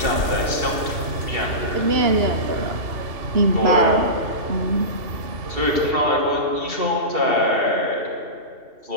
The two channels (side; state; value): left; late; 2.7 ms